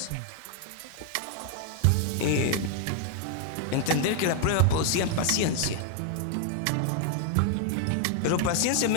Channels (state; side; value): different; both; correlation 0.00